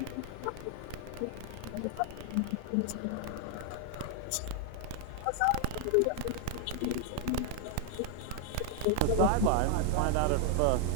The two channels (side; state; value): both; different; correlation 0.00